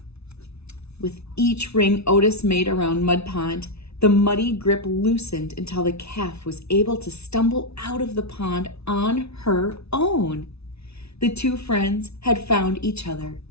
With each ring Otis made around Mud Pond, the muddy grip loosened until the calf was able to stumble out of the pond on her own. The two friends had found each other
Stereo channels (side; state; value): right; late; 0.80 ms